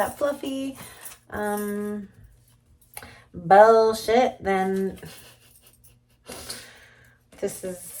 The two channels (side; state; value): both; identical; correlation 1.00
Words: fluffy bullshit, then this